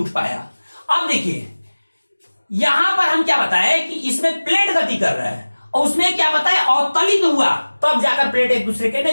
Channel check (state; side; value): inverted; both; correlation -1.00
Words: पाया। अब देखिए यहां पर हम क्या बताए कि इसमें प्लेट गति कर रहा है और उसमें क्या बताया, अवतलित हुआ, तब जाकर प्लेट एक दूसरे के